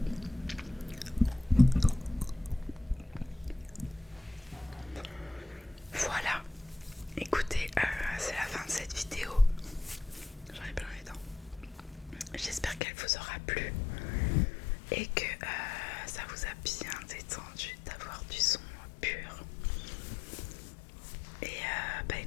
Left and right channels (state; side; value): drops out; right; at 12.8 s